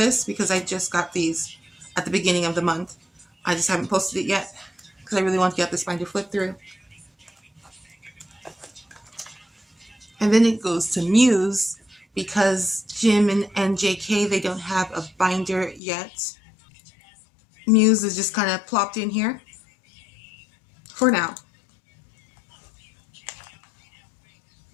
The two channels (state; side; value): drops out; right; at 15.8 s